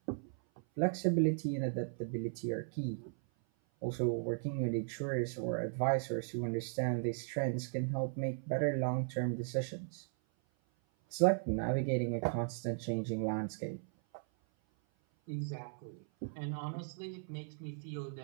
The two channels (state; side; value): silent; left; 53 dB below the other